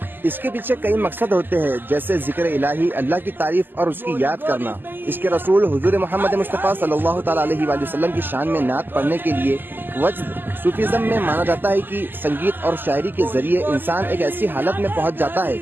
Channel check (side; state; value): left; late; 0.092 ms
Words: اس کے پیچھے کئی مقصد ہوتے ہیں، جیسے ذکر الہی، اللہ کی تعریف اور اس کی یاد کرنا۔ اس کے رسول حضور محمد مصطفیٰ صلی اللہ تعالیٰ علیہ وآلہ وسلم کی شان میں نعت پڑھنے کے لیے وجد۔ صوفیزم میں مانا جاتا ہے کہ سنگیت اور شاعری کے ذریعے انسان ایک ایسی حالت میں پہنچ جاتا ہے